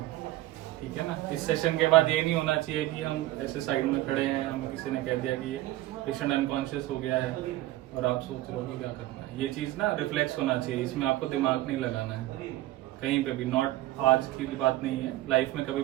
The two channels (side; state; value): left; quieter; 16.5 dB